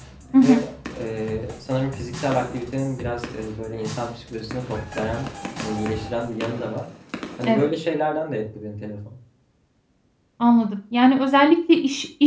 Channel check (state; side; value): identical; both; correlation 1.00